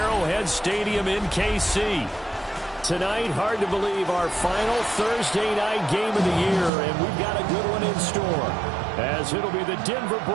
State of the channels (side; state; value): left; drops out; at 6.7 s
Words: Stadium in KC. Tonight, hard to believe, our final Thursday night game of the year, and we've got a good one in store, as it'll be the Denver